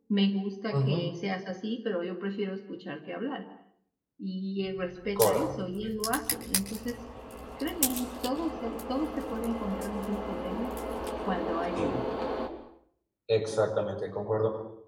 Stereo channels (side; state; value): both; identical; correlation 1.00